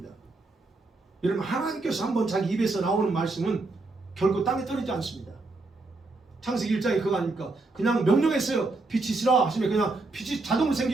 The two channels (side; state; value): left; quieter; 3.3 dB